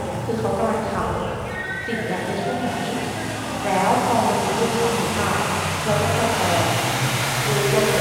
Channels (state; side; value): identical; both; correlation 1.00